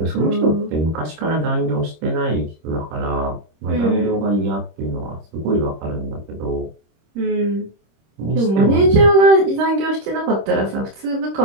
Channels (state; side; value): late; left; 26 ms